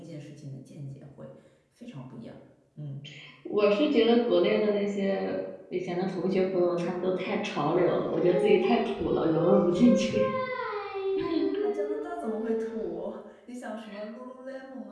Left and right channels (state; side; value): identical; both; correlation 1.00